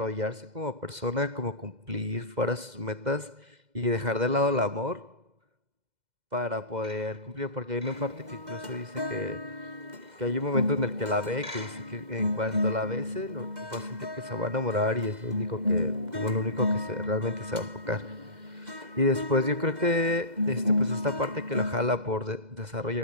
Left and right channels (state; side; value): late; left; 2.0 ms